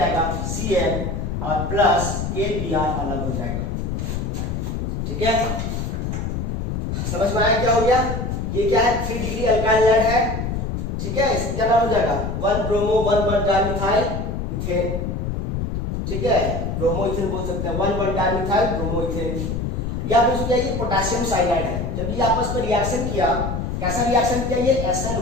Cn और प्लस KBr अलग हो जाएगा। ठीक है, समझ में आया क्या हो गया? ये क्या है? 3 डिग्री अल्काइल हैलाइड है। ठीक है, इसका क्या नाम हो जाएगा? 1 ब्रोमो 1 डाइमिथाइल इथेन। ठीक है, ब्रोमो इथेन बोल सकते हैं, 1 डाइमिथाइल ब्रोमो इथेन। या फिर क्या ये पोटेशियम साइनाइड है। जब ये आपस में रिएक्शन किया, कैसा रिएक्शन किया? ये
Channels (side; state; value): left; noise; rumble, 3 dB below the sound